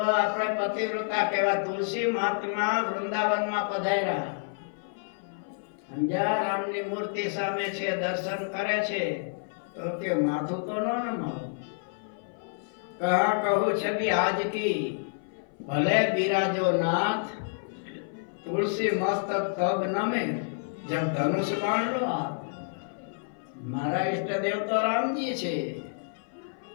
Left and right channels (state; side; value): silent; right; 56 dB below the other